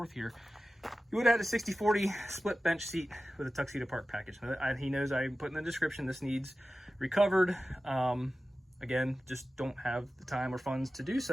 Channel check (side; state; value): both; normal; correlation 0.95